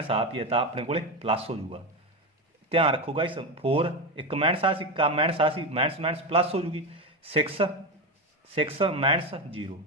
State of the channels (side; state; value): both; normal; correlation 0.15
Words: ਆ ਪੀ ਤਾਂ ਆਪਣੇ ਕੋਲੇ ਪਲੱਸ ਹੋ ਜਾਊਗਾ। ਧਿਆਨ ਰੱਖੋ ਗਾਇਸ 4 ਇੱਕ ਮਾਈਨਸ ਆ ਸੀ ਮਾਈਨਸ ਆ ਸੀ ਮਾਈਨਸ ਮਾਈਨਸ ਪਲੱਸ ਹੋ ਜੂਗੀ 6 ਮਾਈਨਸ 0